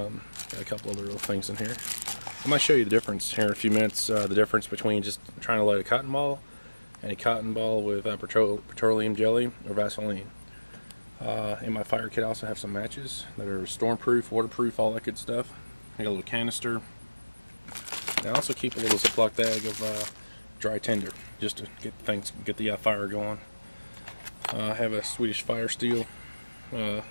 a couple other little things in here. I might show you the difference here in a few minutes. The difference between just trying to light a cotton ball and a cotton ball with petroleum jelly or Vaseline. In my fire kit I also have some matches that are stormproof, waterproof, all that good stuff. I got a little canister. And I also keep a little Ziploc bag of dry tinder just to get the fire going. I have a Swedish Fire Steel to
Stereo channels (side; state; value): both; inverted; correlation -1.00